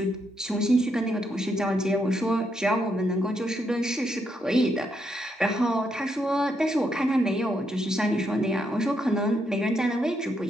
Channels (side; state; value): both; normal; correlation 0.79